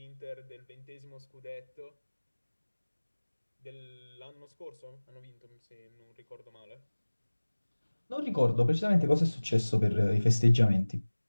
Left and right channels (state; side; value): inverted; both; correlation -1.00